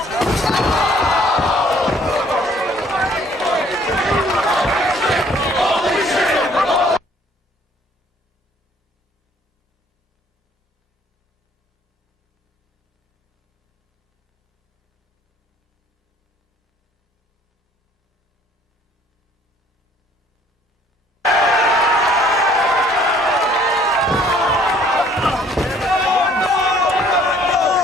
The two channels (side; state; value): both; normal; correlation 0.59